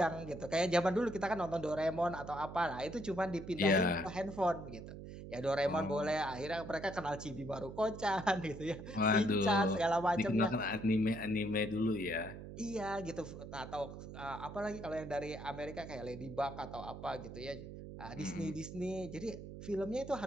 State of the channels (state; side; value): noise; right; hum, 11 dB below the sound